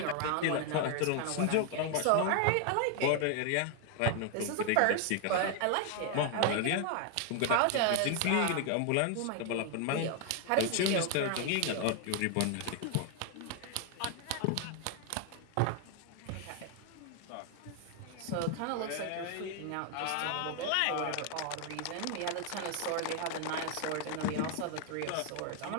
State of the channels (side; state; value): both; different; correlation 0.00